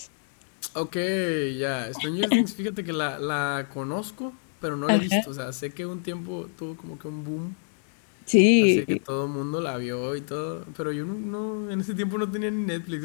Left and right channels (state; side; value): silent; right; digital silence